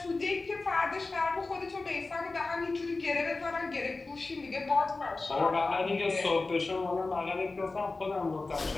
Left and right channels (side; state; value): right; quieter; 3.5 dB